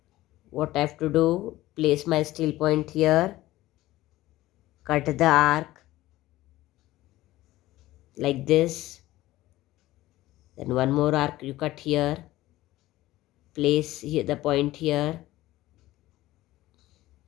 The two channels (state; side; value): quieter; right; 16.6 dB